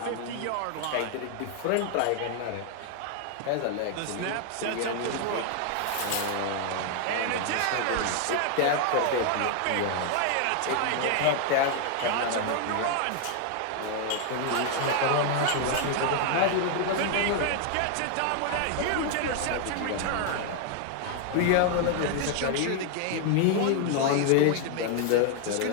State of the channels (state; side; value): different; both; correlation 0.00